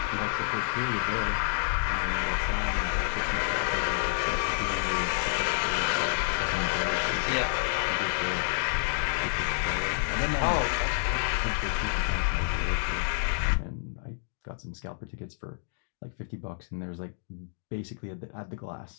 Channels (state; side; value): silent; right; digital silence